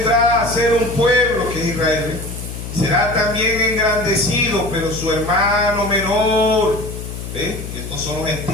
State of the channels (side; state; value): left; noise; hum, 9 dB below the sound